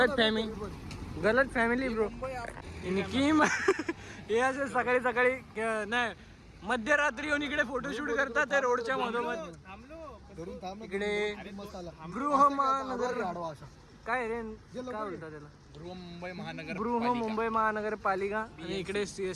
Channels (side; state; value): both; identical; correlation 1.00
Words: फॅमिली ब्रो. निकीम हे असे सकाळी नाही मध्यरात्री येऊन इकडे फोटोशूट करतात ते रोडच्या मधोमध. इकडे गृहमहानगर काय रे काय बोलतात त्याला, गृहमुंबई महानगरपालिका. आणि इकडे